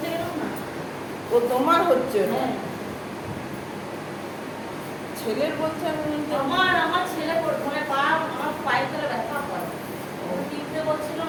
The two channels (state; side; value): identical; both; correlation 1.00